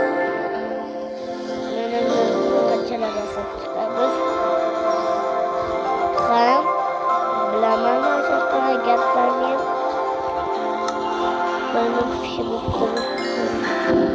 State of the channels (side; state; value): both; identical; correlation 1.00